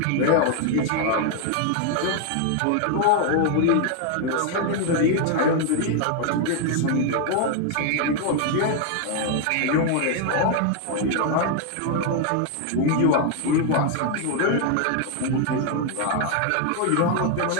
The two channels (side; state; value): both; different; correlation 0.00